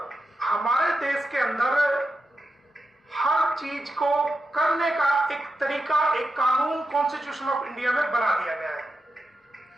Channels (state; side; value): normal; both; correlation 0.88